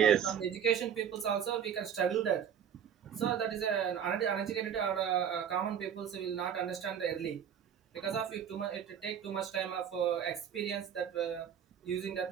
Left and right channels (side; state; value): left; quieter; 8.5 dB